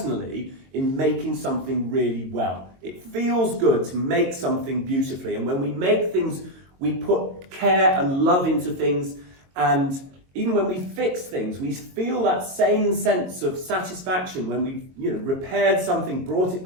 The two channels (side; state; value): left; late; 22 ms